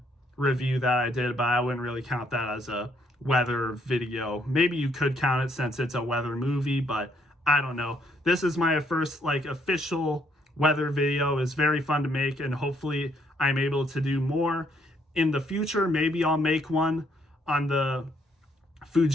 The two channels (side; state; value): both; normal; correlation 0.70